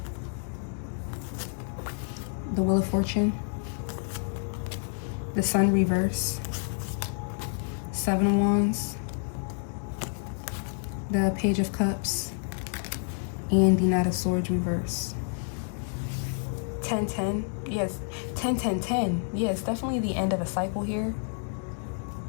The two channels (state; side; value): silent; right; 59 dB below the other